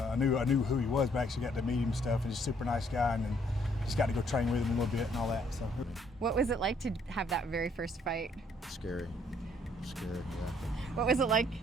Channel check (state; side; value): normal; both; correlation 0.66